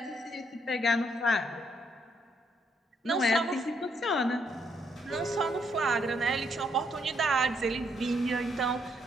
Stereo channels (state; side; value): normal; both; correlation 0.73